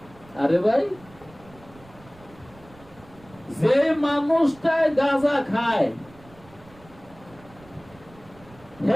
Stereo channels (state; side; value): noise; right; rumble, 24 dB below the sound